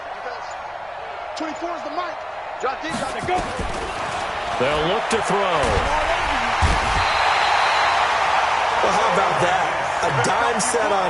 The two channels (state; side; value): identical; both; correlation 1.00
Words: 24 is the mic. Drop deep, drop it, go. They'll look to throw. Well, how about that? A dime set